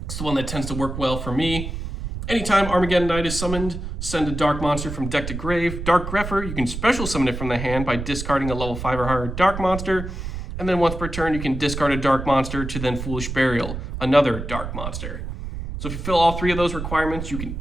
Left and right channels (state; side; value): noise; right; rumble, 6 dB below the sound